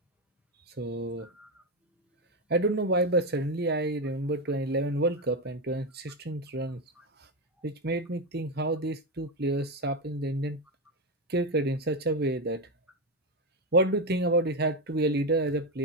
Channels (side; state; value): both; normal; correlation 0.11